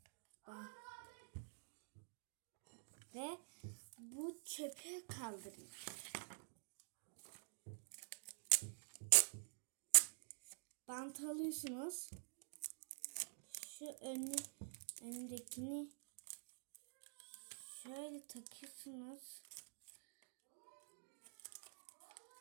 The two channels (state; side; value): silent; left; digital silence